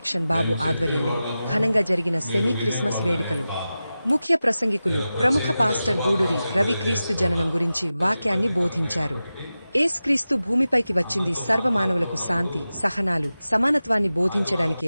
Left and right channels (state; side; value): inverted; both; correlation -0.94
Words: బాబు ఆధ్వర్యంలో ఘనంగా జరిగిన సెమీ క్రిస్మస్ వేడుకలు. ముఖ్య ప్రసంగికులు ప్రముఖ పాస్టర్ గూడూరి రవి క్రీస్తు జననం గురించి వాక్యాన్ని బోధించారు. యేసుక్రీస్తు భూమిపైకి వచ్చింది సర్వమానవులకు శాంతి, సహనాలు, సమానత్వాన్ని బోధించడానికే